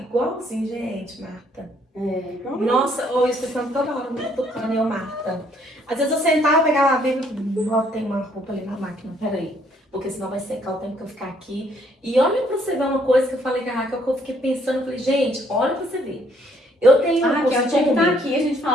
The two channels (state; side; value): normal; both; correlation 0.66